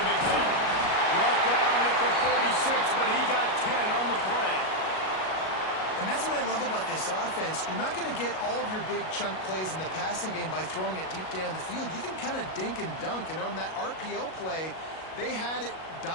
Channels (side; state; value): right; late; 37 ms